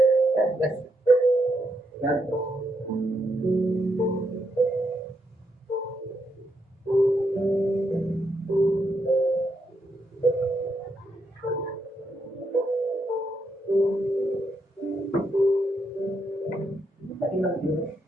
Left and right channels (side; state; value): both; normal; correlation 0.80